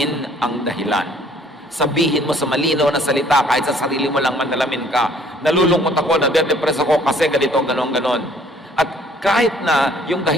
ang dahilan. Sabihin mo sa malinaw na salita, kahit sa sarili mo lang manalamin ka, nalulungkot ako, nade-depress ako kasi ganito, ganon. At kahit na yung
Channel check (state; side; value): normal; both; correlation 0.58